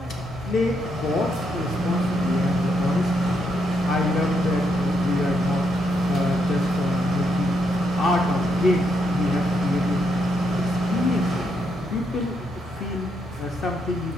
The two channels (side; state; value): both; normal; correlation 0.78